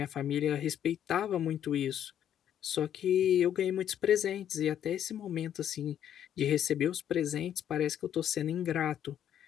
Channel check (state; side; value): quieter; right; 10.1 dB